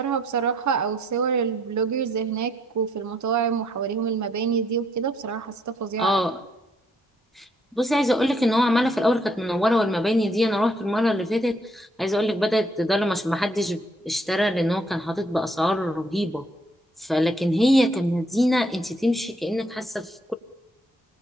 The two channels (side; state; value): both; normal; correlation 0.69